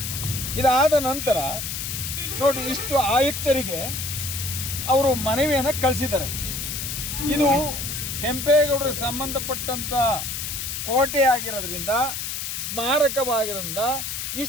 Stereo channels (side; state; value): left; noise; hiss, 4 dB below the sound